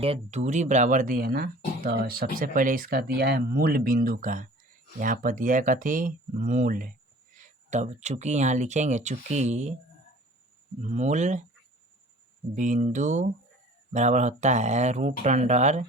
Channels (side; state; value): both; normal; correlation 0.47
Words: ये दूरी बराबर दी है ना, तो सबसे पहले इसका दिया है मूल बिंदु का, यहाँ पर दिया है कथी मूल, तब चूंकि यहाँ लिखेंगे चूंकि मूल बिंदु बराबर होता है √x²